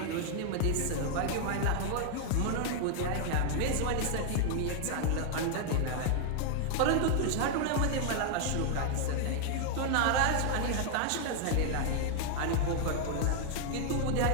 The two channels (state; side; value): different; both; correlation 0.00